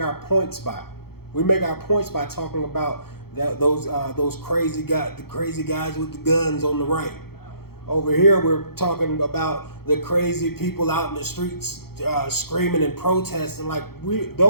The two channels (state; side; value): late; right; 0.95 ms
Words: points by. We make our points by talking about those crazy guys with the guns on the right. Over here, we're talking about the crazy people out in the streets screaming and protesting. Like